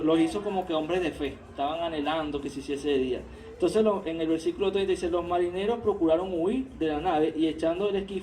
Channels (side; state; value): both; identical; correlation 1.00